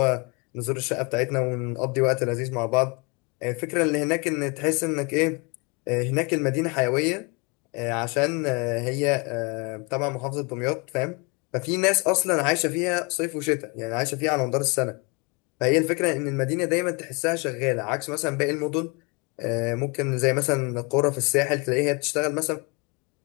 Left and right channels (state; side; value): quieter; right; 29.6 dB